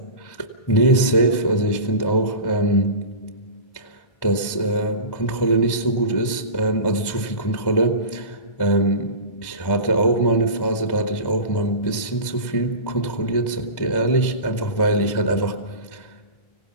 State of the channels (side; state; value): right; late; 1.1 ms